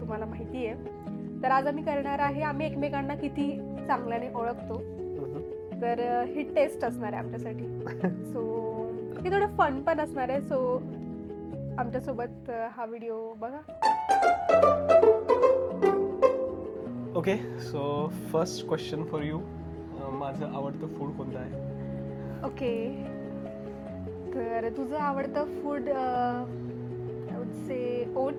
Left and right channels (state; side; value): identical; both; correlation 1.00